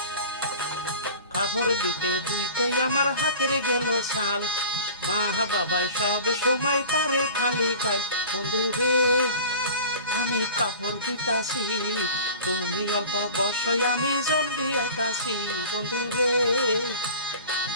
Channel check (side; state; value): both; inverted; correlation -0.39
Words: কাপড় দিতে দুইতে আমার হাতের গেল ছাল। মা বাবাই সব সময় পারে খালি গায়। বন্ধুরে আমি কাপড় দিতাছি, তুমি অল্প বর্ষয় আমি জলদি আইতাছি। বন্ধুরে